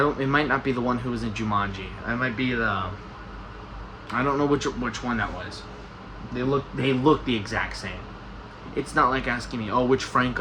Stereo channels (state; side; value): identical; both; correlation 1.00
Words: it might not be the one who was in Jumanji. It might be I don't know which one that was. They look the exact same. It's not like asking me, oh, which